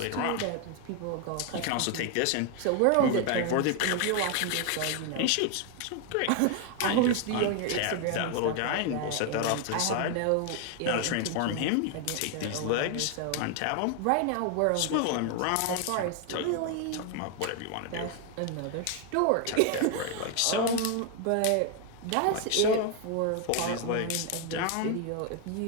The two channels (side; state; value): both; different; correlation 0.01